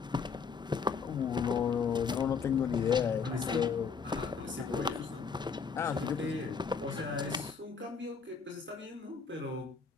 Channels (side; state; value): right; quieter; 5.7 dB